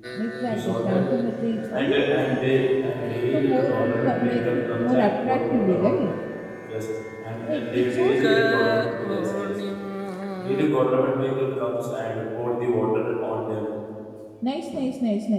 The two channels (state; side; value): identical; both; correlation 1.00